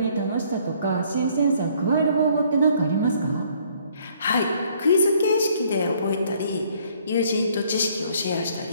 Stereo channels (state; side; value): inverted; both; correlation -0.62